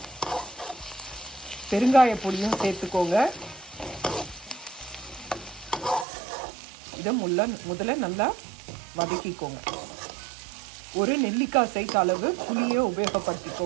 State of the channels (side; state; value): left; drops out; at 6.1 s